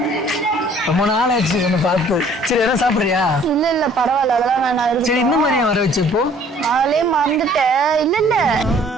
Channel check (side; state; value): both; normal; correlation 0.56